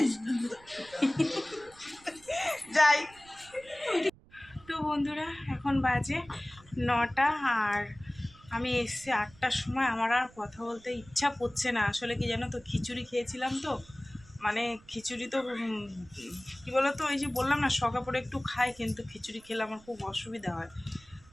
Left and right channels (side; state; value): right; noise; rumble, 25 dB below the sound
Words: যাই তো বন্ধুরা, এখন বাজে 9টা, আর আমি এসছি 8টার সময়। আমার আর কথা বলতে ইচ্ছা করছে না। আসলে কি জানো তো, খিচুড়ি খেয়েছিলাম তো, মানে খিচুড়ি তো কী বলো তো, ওই যে বললাম না শখা পড়ে একটু খাই, কিন্তু খিচুড়ি খেলে আমার খুব অসুবিধা হয়।